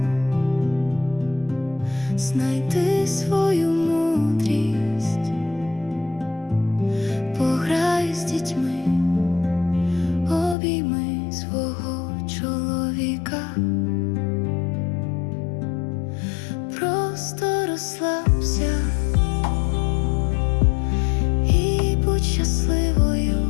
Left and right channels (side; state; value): right; drops out; at 10.6 s